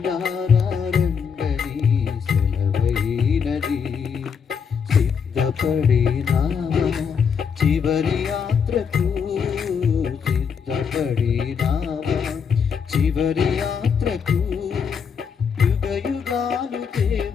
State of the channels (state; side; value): quieter; right; 6.6 dB